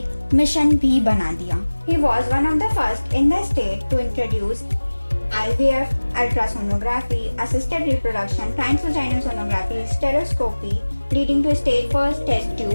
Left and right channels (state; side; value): inverted; both; correlation -1.00